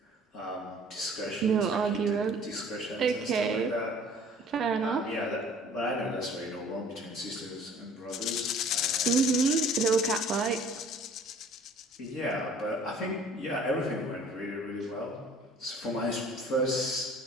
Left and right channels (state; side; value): normal; both; correlation 0.52